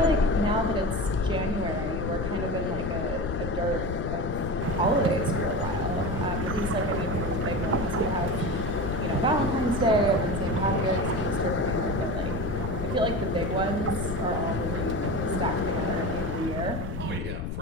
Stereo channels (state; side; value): noise; left; rumble, 5 dB below the sound